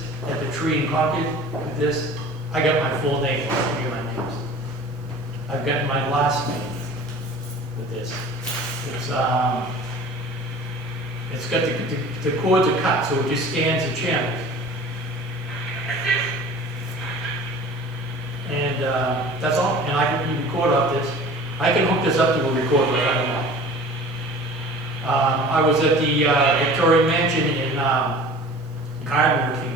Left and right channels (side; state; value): both; normal; correlation 0.43